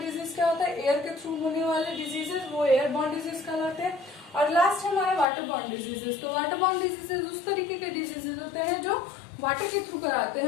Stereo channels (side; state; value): right; drops out; at 5.2 s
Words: क्या होता है, एयर के थ्रू होने वाले डिजीजेस, वो एयरबॉर्न डिजीज कहलाते हैं। और लास्ट है हमारा वाटरबॉर्न डिजीजेस। तो वाटरबॉर्न डिजीजेस उस तरीके के डिजीजेस होते हैं जो वाटर के थ्रू कराते